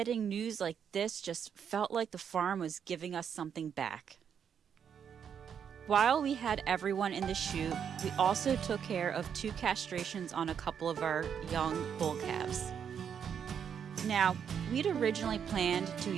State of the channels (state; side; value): quieter; left; 7.8 dB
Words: news like this just felt like the farm was giving us something back. While we had everyone in the chute, we also took care of 2 castrations on a couple of our young bull calves. Now, we'd originally planned to